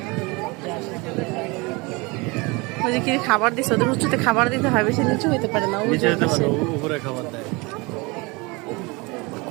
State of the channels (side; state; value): left; quieter; 26.1 dB